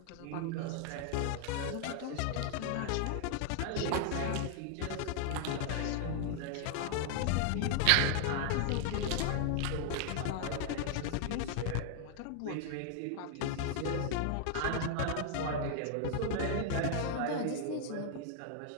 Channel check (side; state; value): both; different; correlation 0.00